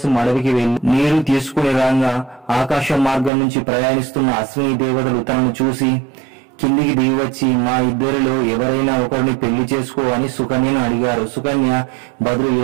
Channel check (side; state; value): left; drops out; at 3.3 s